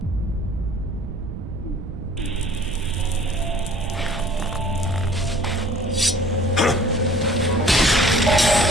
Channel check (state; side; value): noise; right; rumble, 9 dB below the sound